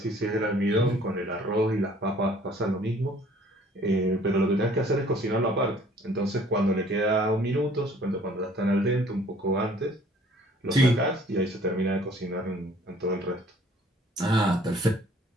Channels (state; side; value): normal; both; correlation 0.55